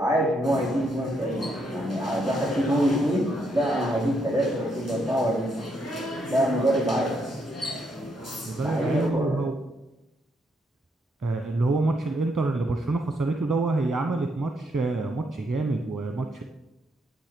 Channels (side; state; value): both; normal; correlation 0.76